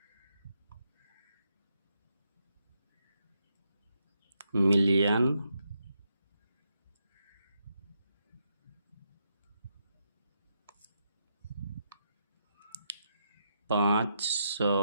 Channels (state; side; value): inverted; both; correlation -0.80